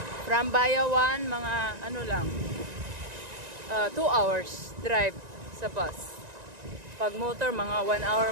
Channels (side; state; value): left; late; 1.9 ms